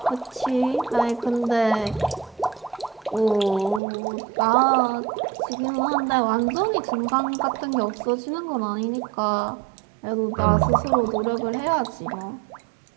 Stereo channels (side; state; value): left; drops out; at 3.8 s